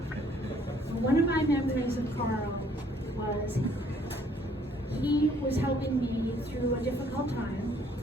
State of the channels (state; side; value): normal; both; correlation 0.63